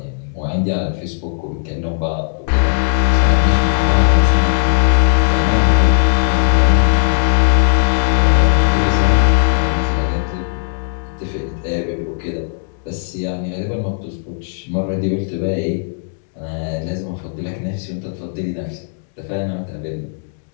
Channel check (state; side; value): silent; right; digital silence